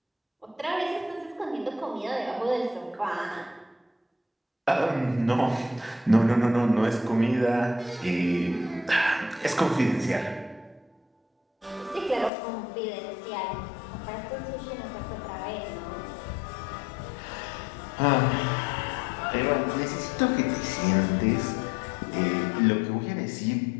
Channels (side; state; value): right; drops out; at 12.3 s